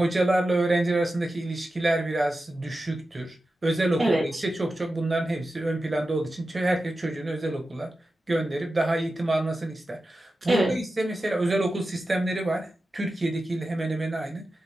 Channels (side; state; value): both; normal; correlation 0.93